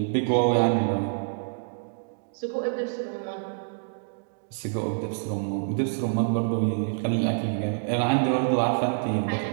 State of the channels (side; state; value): left; silent; digital silence